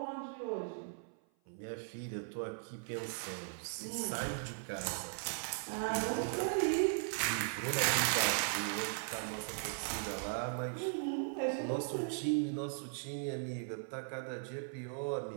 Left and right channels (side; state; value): left; silent; 52 dB below the other